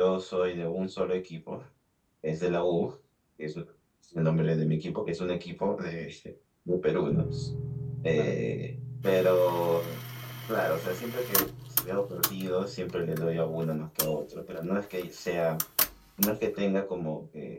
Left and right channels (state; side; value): identical; both; correlation 1.00